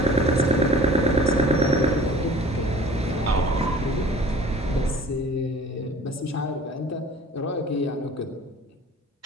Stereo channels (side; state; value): both; normal; correlation 0.47